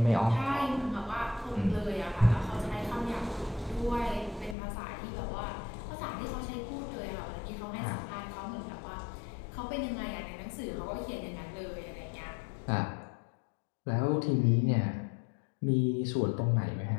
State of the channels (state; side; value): drops out; right; at 4.5 s